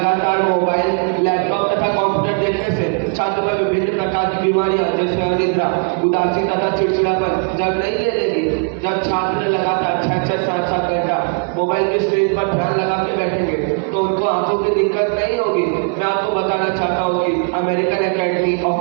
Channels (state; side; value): quieter; left; 38.4 dB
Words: मोबाइल, लैपटॉप तथा कंप्यूटर देखने से छात्र में विभिन्न प्रकार की बीमारियां जैसे अनिद्रा, उदासी तथा चिड़चिड़ापन जब नहीं ले लेगी, जब छात्र लगातार 6-6, 7-7 घंटा मोबाइल के स्क्रीन पर ध्यान लगा के बैठेंगे तो उनको आंखों की दिक्कत नहीं होगी। मैं आपको बताना चाहता हूँ कि अमेरिकन एकेडमी